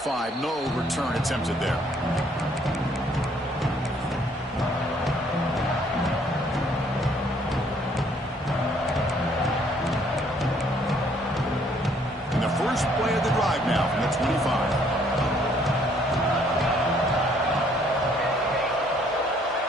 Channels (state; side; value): normal; both; correlation 0.64